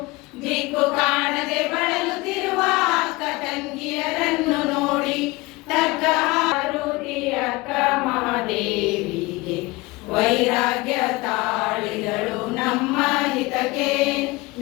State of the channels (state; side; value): quieter; right; 22.8 dB